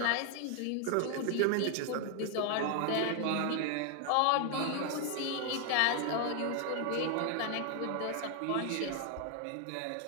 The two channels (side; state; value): both; different; correlation 0.00